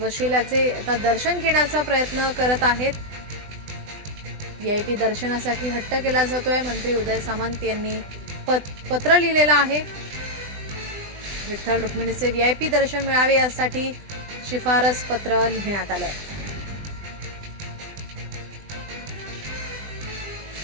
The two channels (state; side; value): late; left; 20 ms